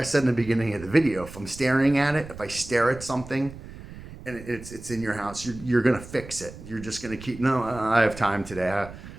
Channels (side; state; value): right; noise; rumble, 15 dB below the sound